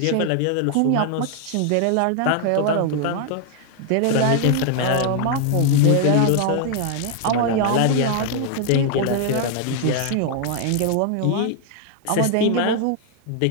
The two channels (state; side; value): different; both; correlation 0.00